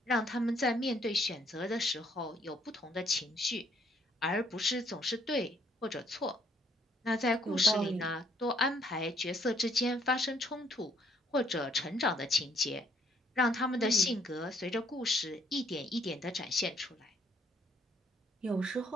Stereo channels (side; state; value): both; normal; correlation 0.67